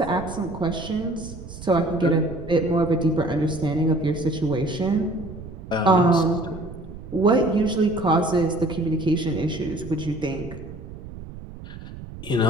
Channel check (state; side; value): noise; right; rumble, 13 dB below the sound